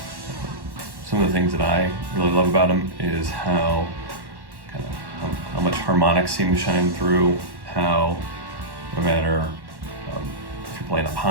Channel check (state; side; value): late; left; 1.1 ms